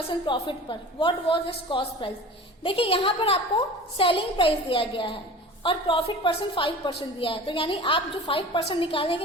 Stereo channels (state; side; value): normal; both; correlation 0.38